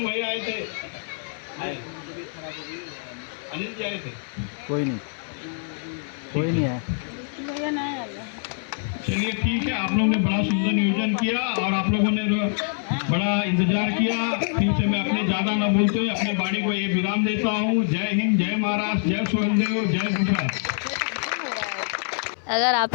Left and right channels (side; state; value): right; silent; 62 dB below the other